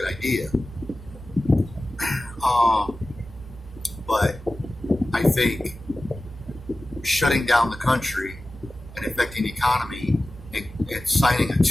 idea. But I think shutting down the country and affecting the economy and signing a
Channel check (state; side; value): normal; both; correlation 0.96